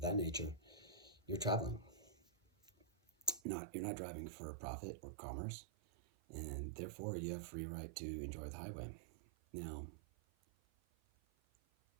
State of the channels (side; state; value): left; drops out; at 3.4 s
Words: nature, you're traveling. You're not driving for profit or commerce, and therefore you have free right to enjoy the highway. Now,